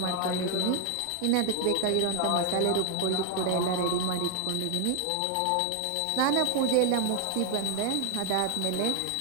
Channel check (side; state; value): both; different; correlation 0.00